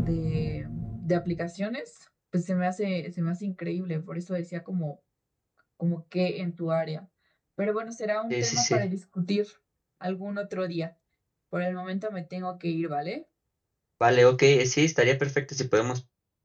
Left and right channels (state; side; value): identical; both; correlation 1.00